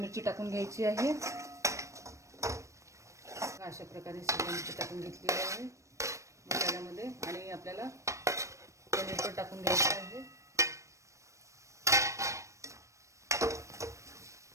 टाकून घ्यायची आहे। अशा प्रकारे शिमला मिरची टाकून घेतलेली आहे मसाल्यामध्ये आणि आपल्याला पनीर पण टाकून घ्यायचं आहे।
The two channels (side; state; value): left; late; 0.15 ms